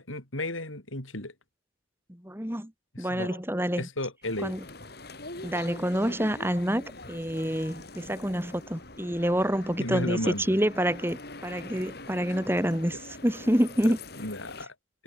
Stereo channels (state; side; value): normal; both; correlation 0.80